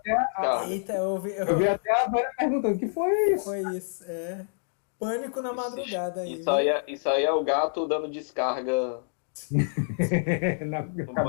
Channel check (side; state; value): right; silent; digital silence